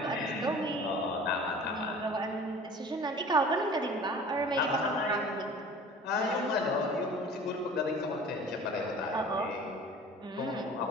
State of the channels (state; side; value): normal; both; correlation 0.44